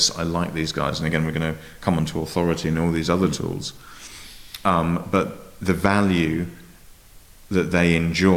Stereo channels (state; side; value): identical; both; correlation 1.00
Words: I like these guys. And again, we're going to come on to authority and all these other tools. But the value that they